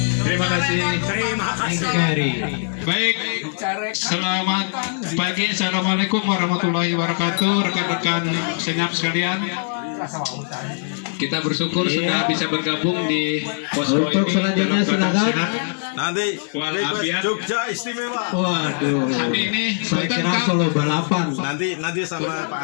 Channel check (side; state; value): right; silent; digital silence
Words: Terima kasih. Baik, selamat pagi. Assalamualaikum warahmatullahi wabarakatuh, rekan-rekan senyap sekalian. Kita bersyukur sudah bisa bergabung di posko ini. Untuk selanjutnya silakan. Nanti Jogja istimewa. Waduh. Hari ini saya kira Solo balapan. Nanti sama Pak